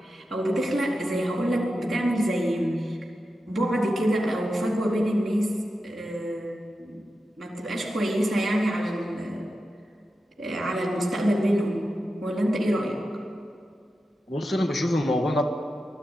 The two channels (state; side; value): normal; both; correlation 0.90